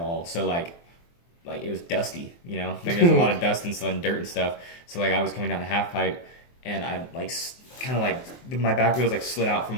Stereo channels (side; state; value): right; late; 23 ms